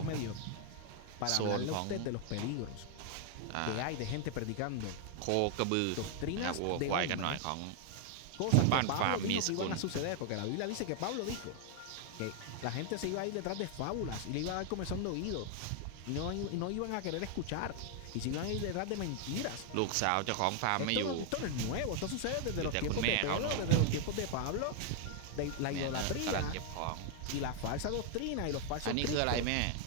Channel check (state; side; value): different; both; correlation 0.00